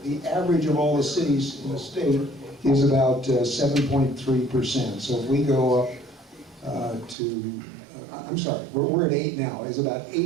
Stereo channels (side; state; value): left; drops out; at 7.2 s